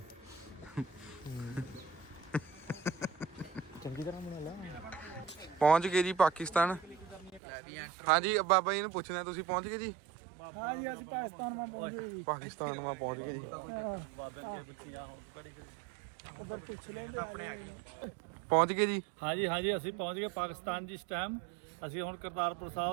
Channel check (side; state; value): left; drops out; at 7.4 s